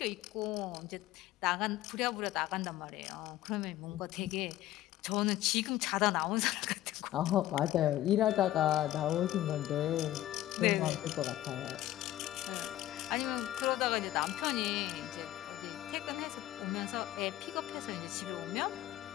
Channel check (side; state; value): right; quieter; 14.4 dB